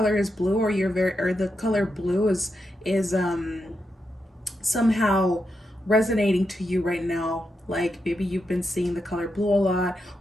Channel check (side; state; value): both; normal; correlation 0.85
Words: is blue, or the color blue is somehow resonating to you right now, like maybe you've been seeing the color blue a lot,